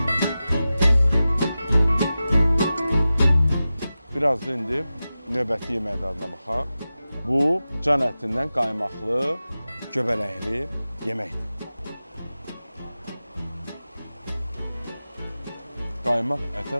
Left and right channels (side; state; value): both; inverted; correlation -0.94